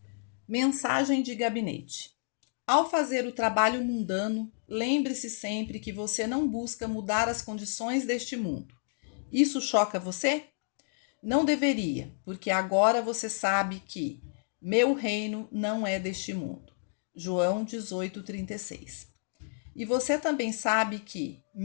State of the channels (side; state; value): right; silent; digital silence